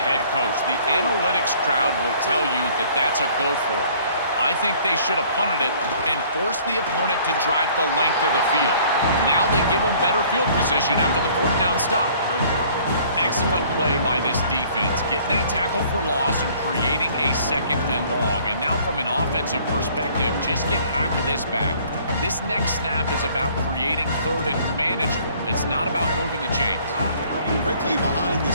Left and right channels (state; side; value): inverted; both; correlation -0.56